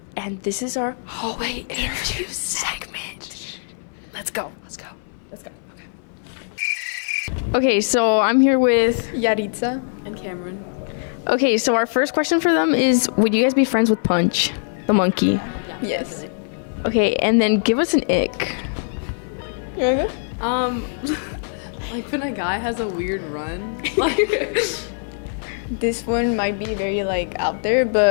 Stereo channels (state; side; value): silent; right; 59 dB below the other